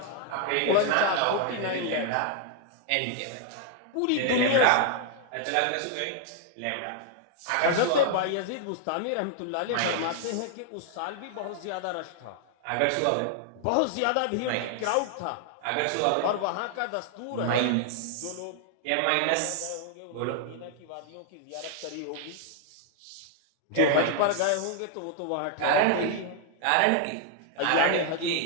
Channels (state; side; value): different; both; correlation 0.00